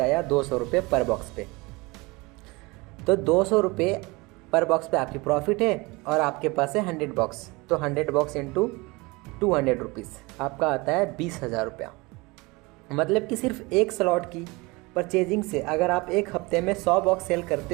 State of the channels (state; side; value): quieter; left; 24.6 dB